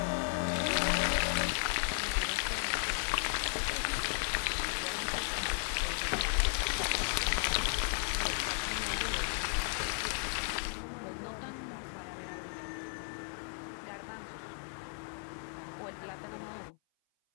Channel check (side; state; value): right; silent; 54 dB below the other